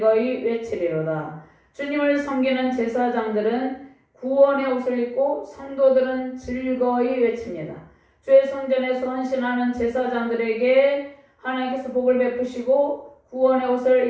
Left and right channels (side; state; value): both; identical; correlation 1.00